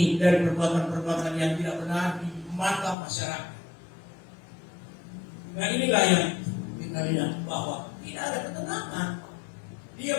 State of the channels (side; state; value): right; drops out; at 3.0 s